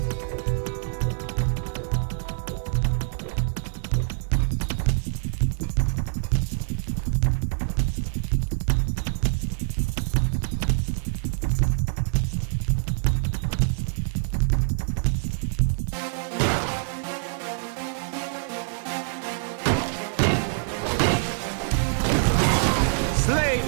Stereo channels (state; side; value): silent; left; digital silence